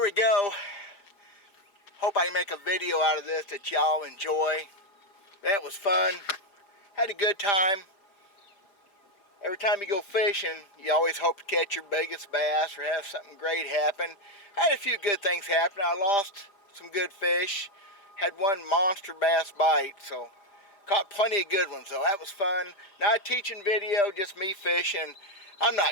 we go. Hope I can make a video out of this that y'all enjoy. That was fun. Had a good time. Every time you go fishing, you always hope to catch your biggest bass or have something great happen. I had a few good things happen. I lost some good fish. Had one monster bass bite, so caught plenty of good ones, though. That was fun. Not a teaching video, just me fishing. I'm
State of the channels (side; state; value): right; late; 5.0 ms